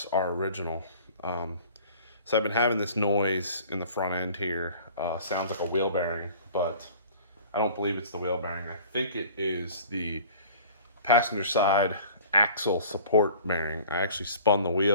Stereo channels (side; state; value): both; inverted; correlation -0.47